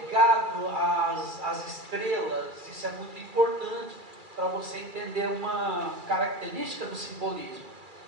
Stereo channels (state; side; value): late; left; 2.3 ms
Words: às estrelas. Isso é muito importante para você entender uma característica do simbolismo.